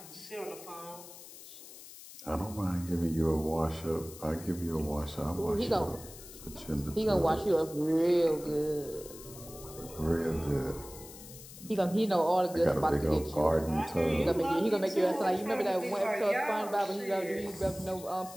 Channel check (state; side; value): noise; left; hiss, 16 dB below the sound